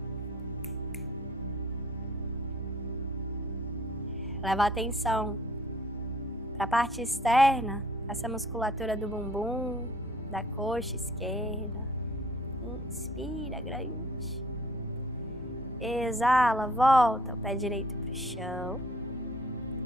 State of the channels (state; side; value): normal; both; correlation 0.56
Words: leva a atenção para a parte externa, essa musculatura do bumbum, da coxa esquerda. Inspira grande. Exala, volta o pé direito para o chão.